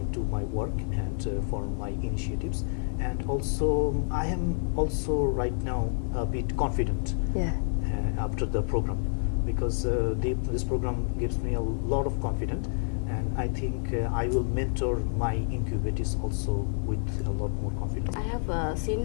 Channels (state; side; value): silent; right; 57 dB below the other